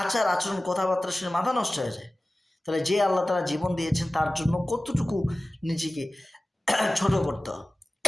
আচার আচরণ কথাবার্তা শুনে মাথা নষ্ট হয়ে যায়। তাহলে যে আল্লাহ তাআলা জীবন দিয়েছেন তার জন্য কতটুকু নিজেকে ছোট করতে হবে,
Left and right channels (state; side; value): normal; both; correlation 0.97